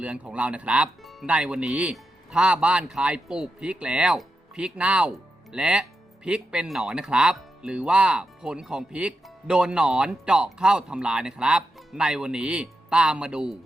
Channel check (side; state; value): both; normal; correlation 0.87